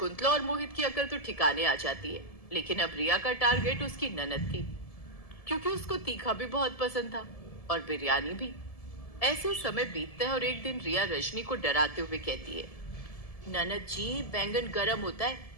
और मोहित की अकल तो ठिकाने आ जाती है। लेकिन अब रिया का टारगेट उसकी ननद थी, क्योंकि उसको तीखा भी बहुत पसंद था और बिरयानी भी। ऐसे समय बीतता है और एक दिन रिया रजनी को डराते हुए कहती है, ननद जी, बैंगन गर्म होता है।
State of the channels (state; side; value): late; right; 1.7 ms